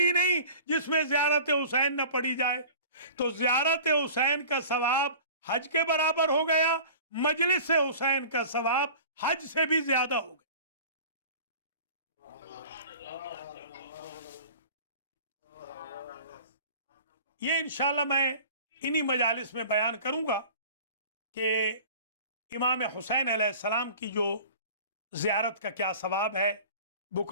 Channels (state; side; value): inverted; both; correlation -0.41